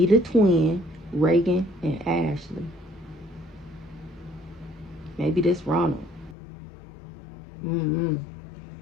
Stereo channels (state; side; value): drops out; right; at 6.4 s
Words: twin, Reagan, and Ashley. Maybe this Ronald. I don't